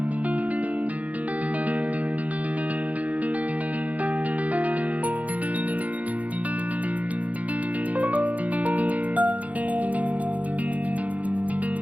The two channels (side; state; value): left; late; 0.071 ms